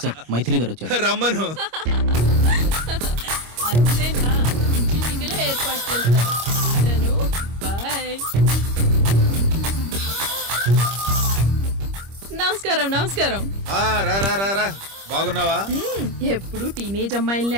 సార్ మైథిలి గారు వచ్చారు. రమ్మను. అంతేనా? మీటింగ్లో ఏర్పాటు చేస్తాను. బాయ్. నమస్కారం. నమస్కారం. రా రా రా రా. బాగున్నావా? ఎప్పుడు టీనేజ్ అమ్మాయిల్ని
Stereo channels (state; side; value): late; left; 25 ms